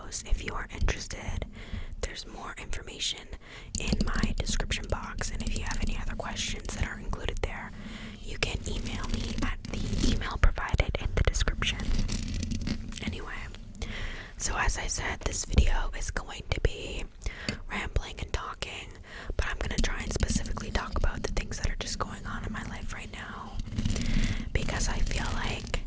If you are interested, there's more information in my description box, and if you have any other questions that are included there, you can email me at the email provided in the description. Anyway, so as I said, this video is going to be rambling and talking, but I'm going to try and specifically talk about the things that are just going on in my life right now, because I feel like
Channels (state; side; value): identical; both; correlation 1.00